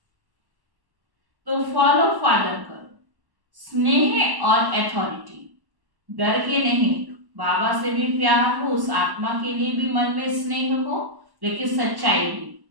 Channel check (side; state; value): left; late; 1.1 ms